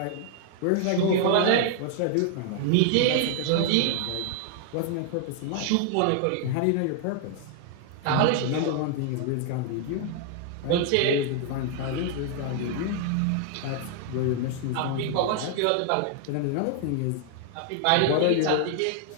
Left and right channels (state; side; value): different; both; correlation 0.00